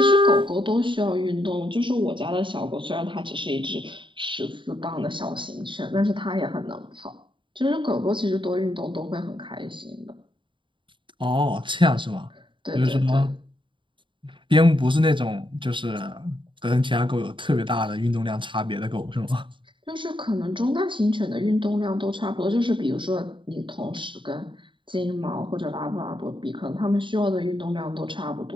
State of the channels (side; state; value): left; late; 0.24 ms